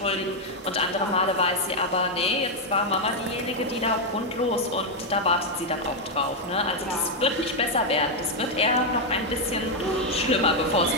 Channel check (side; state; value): both; normal; correlation 0.01